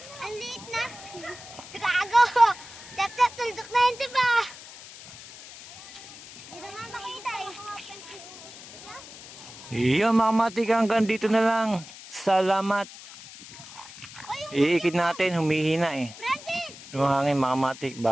Ang liit na. Gago. Tap-tap, tuldok na yun, diba? Hindi na nga makita eh. Yan mga kamatik, hanggang dito na lang. Salamat. Iikit natin, humihina eh. Francis! Yung hangin mga kamatik,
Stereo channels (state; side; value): noise; left; hiss, 16 dB below the sound